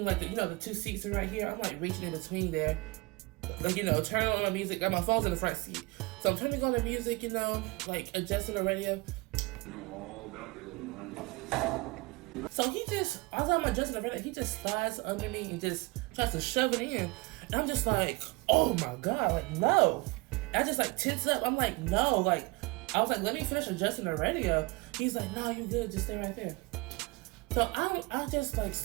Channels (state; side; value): quieter; left; 24.4 dB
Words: like the two seats are right here. I'm like reaching in between there. Like, turning on the music. Got my phone's in the front seat. So I'm turning on the music, like adjusting the radio. So as I'm adjusting the radio, he just slides under me and just tries to shove it in. And I'm just like, oh my God, like, no. And I just like tense up. I'm like, no, like, I was like, let me finish adjusting the radio. He's like, no, you good, just stay right there. So I just like